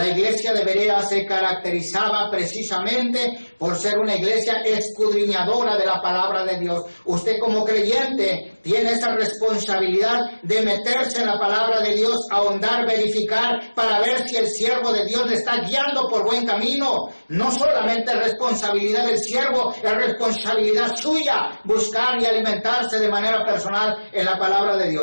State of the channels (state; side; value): inverted; both; correlation -1.00